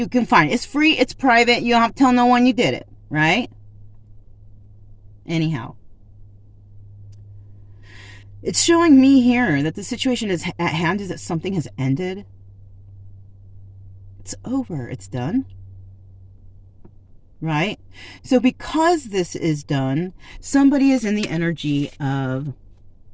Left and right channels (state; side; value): identical; both; correlation 1.00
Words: can find it. It's free, it's private, you don't have to tell no one you did it, right? Anyhow, it's showing me here that the situation is at hand, is that something has ended. It's over, it's done. Right? So because this is done, somebody is in the energy of